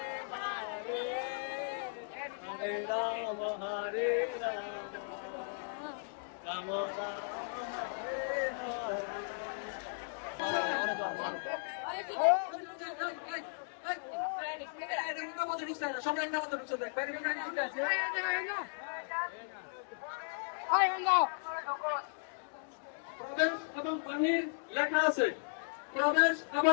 হরে রাম হরে রাম রাম রাম হরে এবং বাহির লেখা আছে, প্রবেশ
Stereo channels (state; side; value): silent; right; digital silence